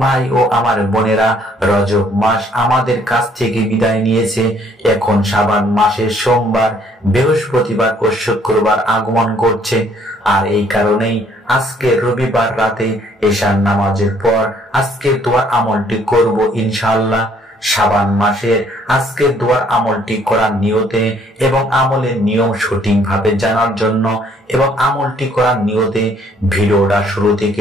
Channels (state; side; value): normal; both; correlation 0.63